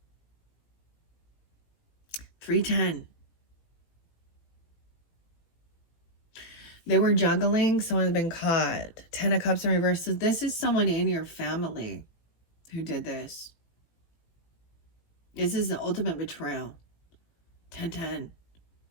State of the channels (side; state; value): right; late; 18 ms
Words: They were juggling. Someone's been caught. 10 of Cups in reverse. So this is someone in your family who did this. This is the ultimate betrayal. 10-10.